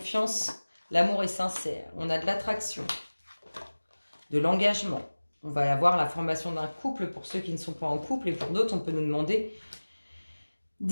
l'amour est sincère. On a de l'attraction, de l'engagement. On va avoir la formation d'un couple pour ceux qui ne sont pas en couple et pour d'autres, on peut nous demander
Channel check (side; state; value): both; inverted; correlation -1.00